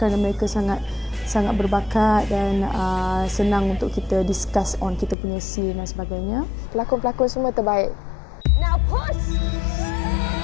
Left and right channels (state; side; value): drops out; right; at 5.2 s